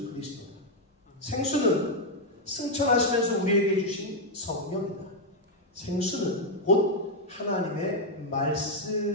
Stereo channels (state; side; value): normal; both; correlation 0.01